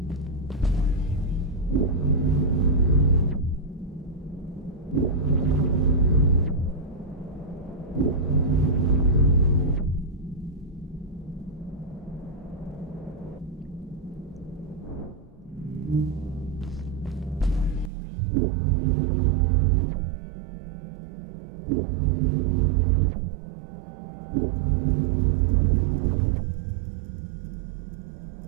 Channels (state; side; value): drops out; left; at 17.9 s